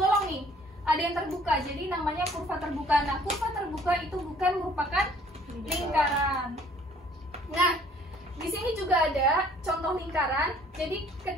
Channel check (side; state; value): both; normal; correlation 0.57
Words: nih, ada yang terbuka. Jadi namanya kurva terbuka. Nah, kurva terbuka itu bukan merupakan lingkaran. Nah, di sini juga ada contoh lingkaran. Jadi